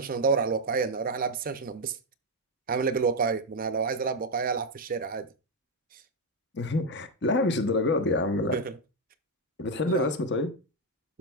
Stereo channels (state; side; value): normal; both; correlation 0.03